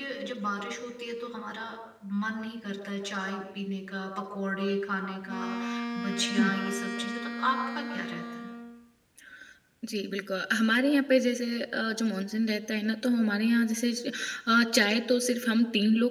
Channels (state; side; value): identical; both; correlation 1.00